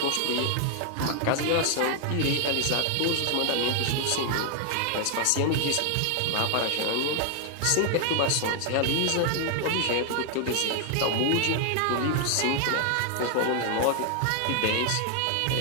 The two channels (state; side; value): different; both; correlation 0.00